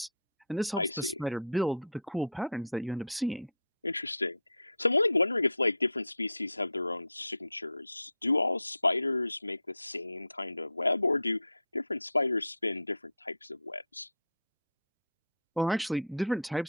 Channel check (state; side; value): inverted; both; correlation -0.53